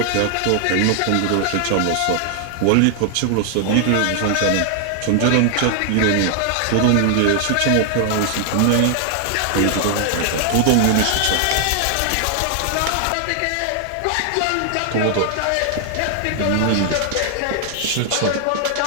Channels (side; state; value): both; different; correlation 0.00